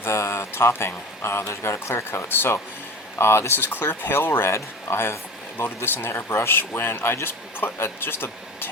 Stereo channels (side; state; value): both; normal; correlation 0.34